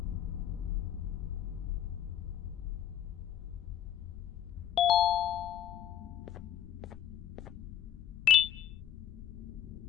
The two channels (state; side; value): quieter; right; 10.9 dB